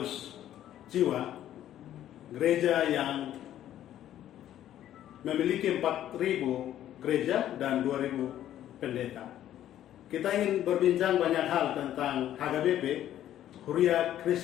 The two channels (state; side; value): quieter; right; 11.9 dB